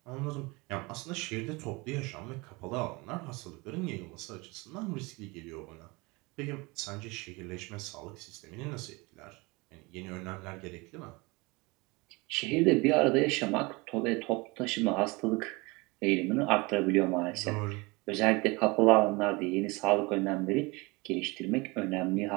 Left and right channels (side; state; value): left; quieter; 25.4 dB